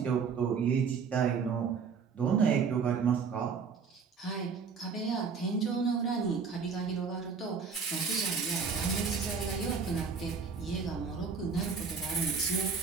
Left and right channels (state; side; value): quieter; left; 5.7 dB